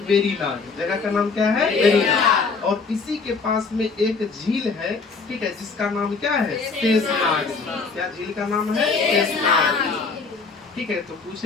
वेरीनाग, जगह का नाम क्या है? वेरीनाग। और इसी के पास में एक झील है, ठीक है, जिसका नाम क्या है? शेषनाग। क्या झील का नाम है? शेषनाग, ठीक है। तो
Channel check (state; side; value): quieter; right; 4.6 dB